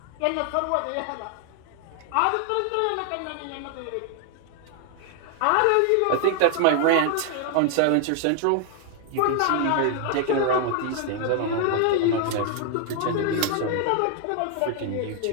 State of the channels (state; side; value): different; both; correlation 0.00